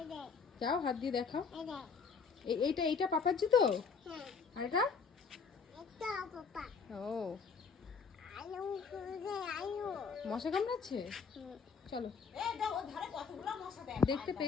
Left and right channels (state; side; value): quieter; right; 5.5 dB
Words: যাও হাত দিয়ে দেখাও। এইটা এইটা পাপার জুতো? আর এটা? ও মশা কামড়াচ্ছে? চলো, এ দাও ওর ধারে কতগুলো মশা দেখ। দেখতে